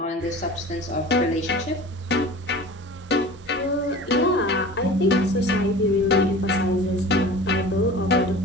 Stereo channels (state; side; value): normal; both; correlation 0.38